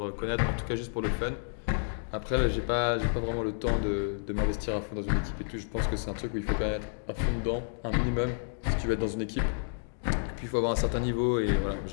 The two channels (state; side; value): silent; right; digital silence